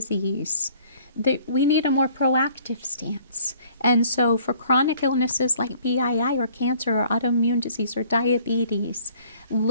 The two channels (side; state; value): both; inverted; correlation -0.56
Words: we need a more proactive stance. And so for chronic illnesses like BII or cancer or autoimmune disease or diabetes,